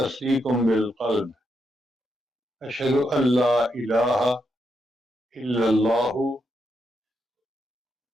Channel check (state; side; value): normal; both; correlation 0.81